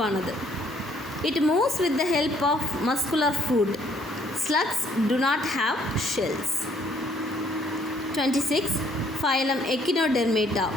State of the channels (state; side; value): normal; both; correlation 0.64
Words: It moves with the help of muscular foot. Slugs do not have shells. 26. Phylum Echinodermata.